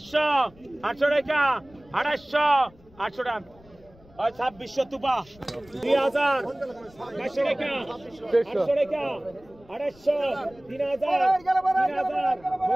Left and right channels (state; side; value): noise; left; rumble, 26 dB below the sound